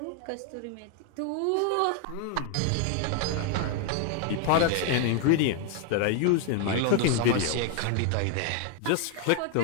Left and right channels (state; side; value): different; both; correlation 0.00